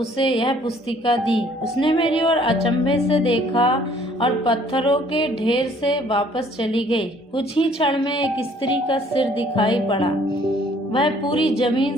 यह पुस्तिका दी। उसने मेरी ओर अचंभे से देखा और पत्थरों के ढेर से वापस चली गई। कुछ ही क्षण में एक स्त्री का सिर दिखाई पड़ा। वह पूरी जमीन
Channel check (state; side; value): normal; both; correlation 0.59